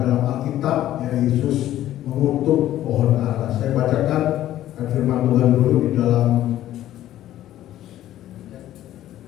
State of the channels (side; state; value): right; quieter; 13.1 dB